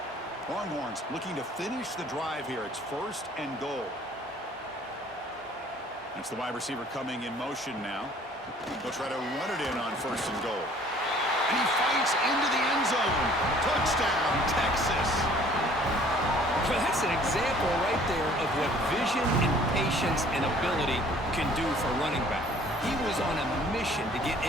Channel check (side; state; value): both; normal; correlation 0.54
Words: Longhorns looking to finish the drive here. It's first and goal. That's the wide receiver coming in motion now. They'll try to run it in on first and goal. And he fights into the end zone. Touchdown, Texas. Well, that's an example right there of what vision and patience and ability can do for running back. He was on a mission to get